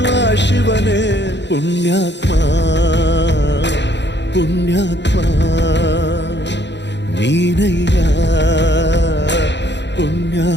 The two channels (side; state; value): right; late; 0.51 ms